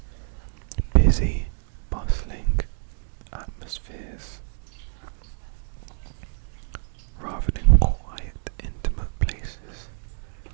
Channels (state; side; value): silent; left; digital silence